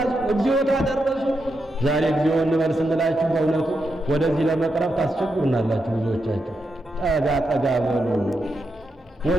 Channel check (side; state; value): both; normal; correlation 0.85